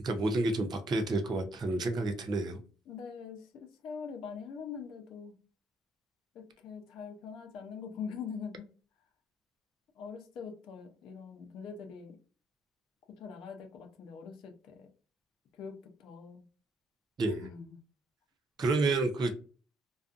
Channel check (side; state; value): both; normal; correlation 0.72